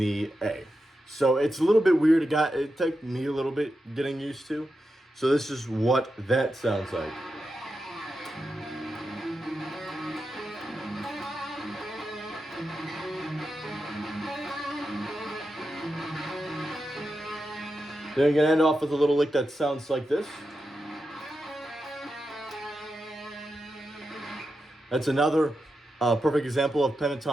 A. So it's a little bit weird. It took me a little bit getting used to. So this is what that sounds like. Then you're gonna end off with a little lick that sounds like this. That's another perfect example of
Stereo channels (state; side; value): normal; both; correlation 0.88